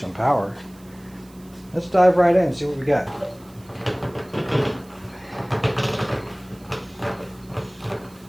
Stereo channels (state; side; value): noise; right; hiss, 27 dB below the sound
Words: some power. Let's dive right in and see what we got.